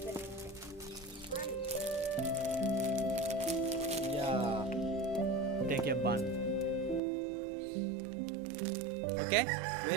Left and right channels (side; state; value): left; drops out; at 7.0 s